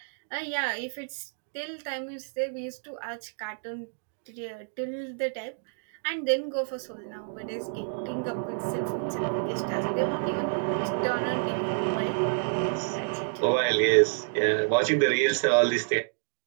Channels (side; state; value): left; silent; digital silence